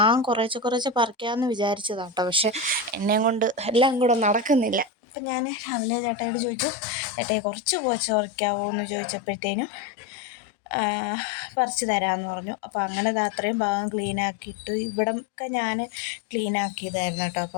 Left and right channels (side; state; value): right; drops out; at 4.9 s